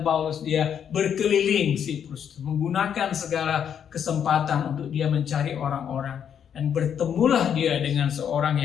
Paulus, dia berkeliling Siprus, menggunakan segala kesempatan untuk dia mencari orang-orang. Dan bertemulah dia dengan seorang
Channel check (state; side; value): quieter; right; 8.4 dB